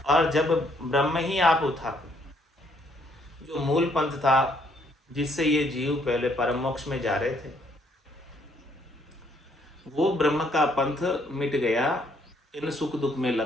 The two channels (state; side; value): normal; both; correlation 0.68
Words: और जब ब्रह्म ही आप उठा, जो मूल पंथ था जिससे ये जीव पहले परम मोक्ष में जा रहे थे, वो ब्रह्म का पंथ मिट गया इन सुख दुख में